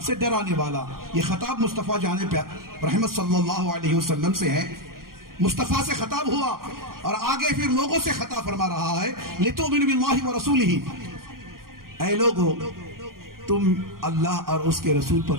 سے ڈرانے والا۔ یہ خطاب مصطفیٰ جان رحمت صلی اللہ علیہ وسلم سے ہے، مصطفیٰ سے خطاب ہوا اور آگے پھر لوگوں سے خطاب فرما رہا ہے، لِتُؤْمِنُوا بِاللَّهِ وَرَسُولِهِ، اے لوگو تم اللہ اور اس کے رسول پر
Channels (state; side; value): late; left; 0.91 ms